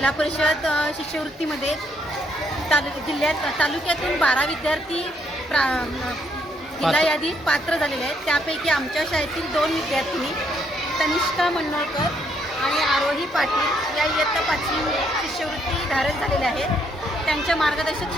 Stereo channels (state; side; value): normal; both; correlation 0.72